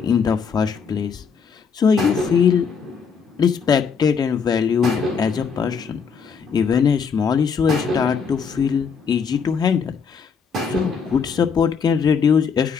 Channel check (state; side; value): quieter; right; 6.2 dB